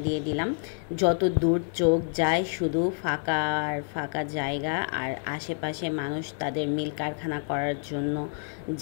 দিয়ে দিলাম। যত দূর চোখ যায় শুধু ফাঁকা আর ফাঁকা জায়গা, আর আশেপাশে মানুষ তাদের মিল কারখানা করার জন্য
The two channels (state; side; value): silent; right; 59 dB below the other